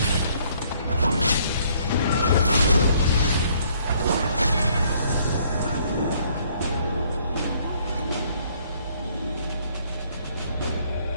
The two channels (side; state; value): both; inverted; correlation -0.64